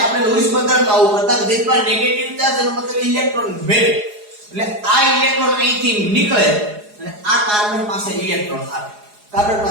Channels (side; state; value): left; late; 4.8 ms